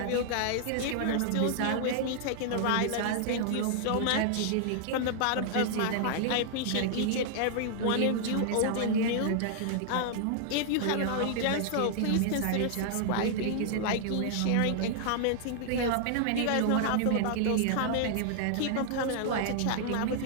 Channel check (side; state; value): both; different; correlation -0.01